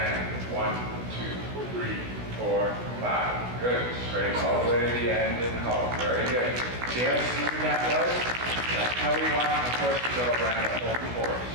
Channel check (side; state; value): left; late; 16 ms